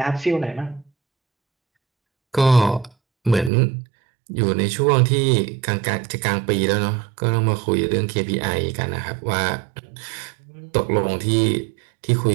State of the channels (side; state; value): left; drops out; at 3.5 s